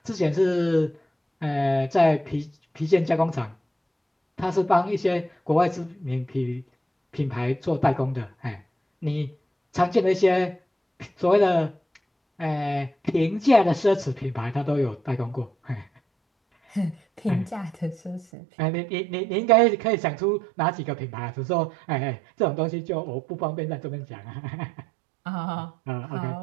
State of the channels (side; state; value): left; drops out; at 18.2 s